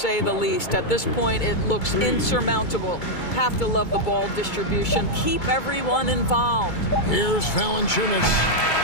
the least. At this point, it looks insurmountable. Have to love the ball distribution. Keep everyone involved. Here's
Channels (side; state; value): right; late; 2.3 ms